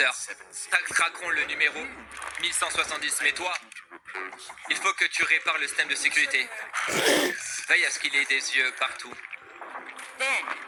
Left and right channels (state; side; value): identical; both; correlation 1.00